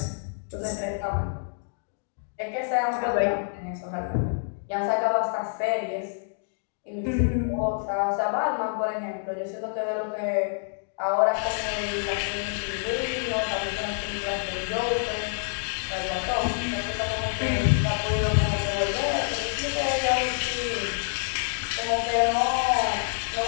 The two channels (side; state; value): right; silent; digital silence